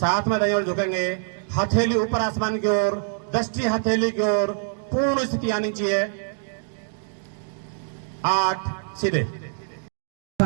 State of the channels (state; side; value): silent; left; digital silence